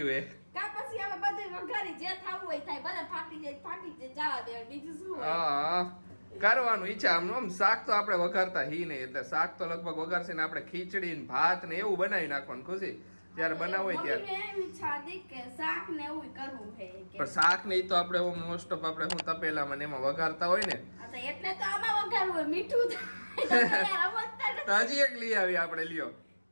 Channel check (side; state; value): both; inverted; correlation -1.00